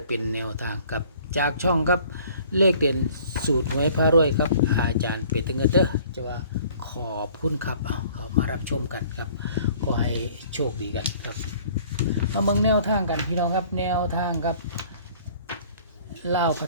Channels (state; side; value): inverted; both; correlation -0.53